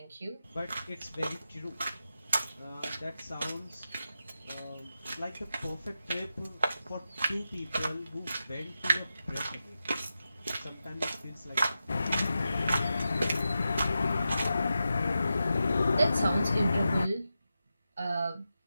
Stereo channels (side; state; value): both; inverted; correlation -0.90